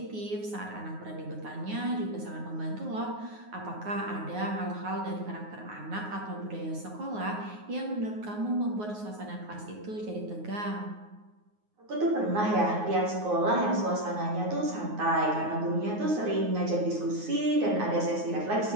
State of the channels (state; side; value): late; left; 9.5 ms